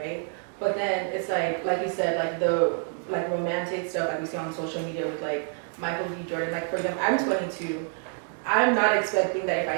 right? But then it's like you said, like the like romantic stuff like we see on social media with like Michael B. Jordan. Like for example, I'm 22. I'm not expecting that if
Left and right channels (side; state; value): left; quieter; 39.3 dB